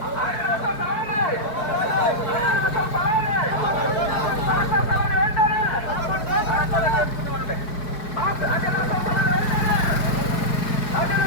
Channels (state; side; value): late; right; 4.6 ms